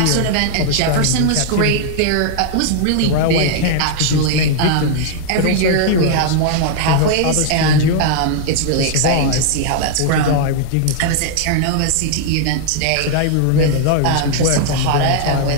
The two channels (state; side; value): different; both; correlation -0.01